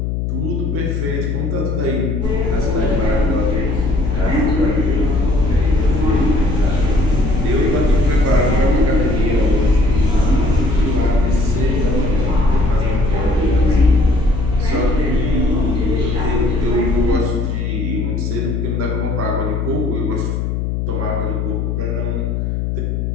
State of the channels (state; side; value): noise; left; hum, 1 dB below the sound